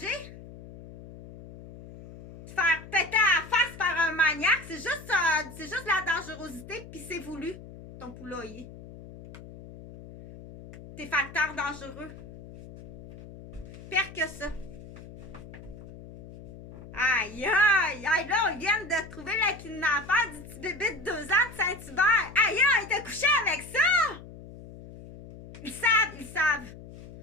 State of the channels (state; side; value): noise; left; hum, 16 dB below the sound